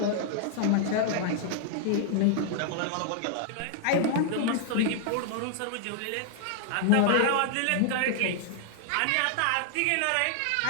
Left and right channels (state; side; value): different; both; correlation -0.01